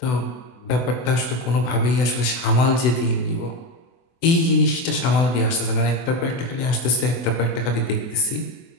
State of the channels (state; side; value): late; right; 24 ms